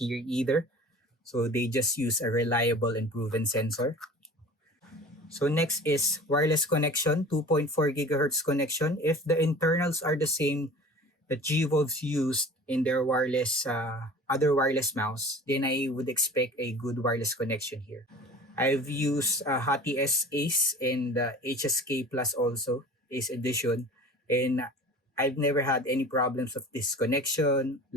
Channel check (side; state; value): both; normal; correlation 0.41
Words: either. So they just use a reliable and proven sensor. So next is wireless connection, 2.4 gigahertz connection. If the internals are the same that gwolves used in their wireless other wireless mouse, then I would expect a good wireless connection here. I've used hati-s Ace and HSK Plus also, Ace Edition, and I've never had any problems of disconnection,